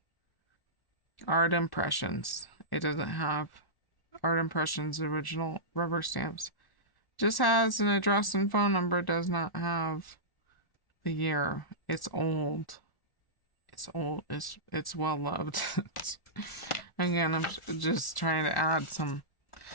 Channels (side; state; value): right; late; 1.1 ms